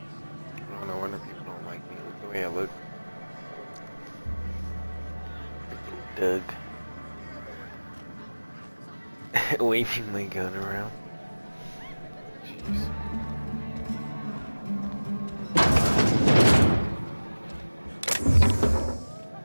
No wonder people don't like me. Look the way I look. Freaking Doug. Waving my gun around. Jeez.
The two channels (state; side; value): inverted; both; correlation -1.00